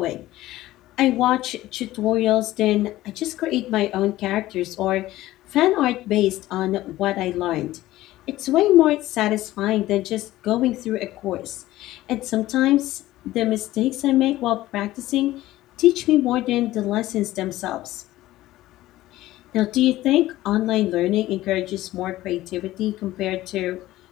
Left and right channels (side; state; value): right; quieter; 16.0 dB